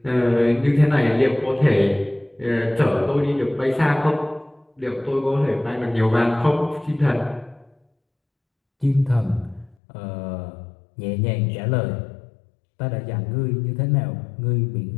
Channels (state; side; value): drops out; right; at 9.8 s